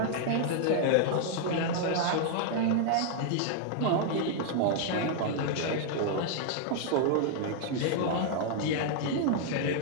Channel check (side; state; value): both; different; correlation -0.01